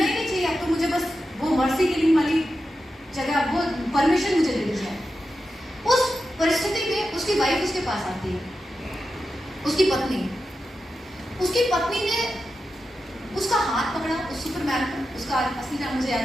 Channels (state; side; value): normal; both; correlation 0.90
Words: ही नहीं चाहिए, अब तो मुझे बस वो मर्सी किलिंग वाली जगह, वो परमिशन मुझे दे दी जाए। उस परिस्थिति में उसकी वाइफ उसके पास आती है, उसकी पत्नी ने उसका हाथ पकड़ा, उस सुपरमैन का, उसका असली नाम मुझे याद